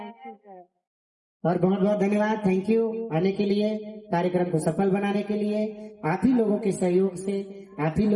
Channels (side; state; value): both; identical; correlation 1.00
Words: और बहुत बहुत धन्यवाद, थैंक यू आने के लिए, कार्यक्रम को सफल बनाने के लिए। आप ही लोगों के सहयोग से, आप ही